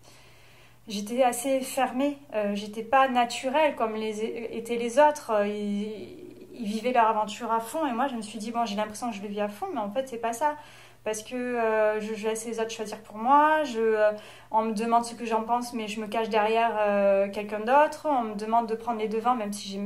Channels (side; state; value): both; identical; correlation 1.00